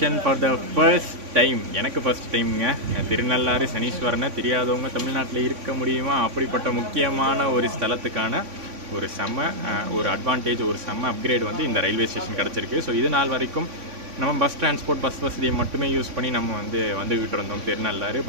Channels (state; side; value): late; left; 3.5 ms